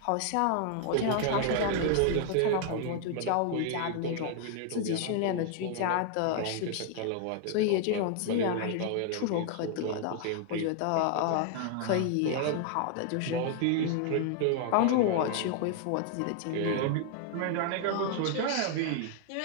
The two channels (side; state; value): both; different; correlation 0.00